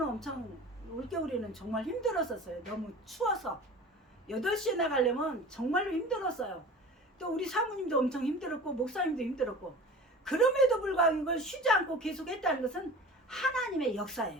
엄청 올겨울에는 정말 힘들었었어요. 너무 추워서 8시에 나가려면 정말로 힘들었어요. 또 우리 사모님도 엄청 힘들었고 목사님도 힘들었고, 그럼에도 불구하고 이걸 쉬지 않고 계속 했다는 것은 하나님의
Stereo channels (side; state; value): both; normal; correlation 0.38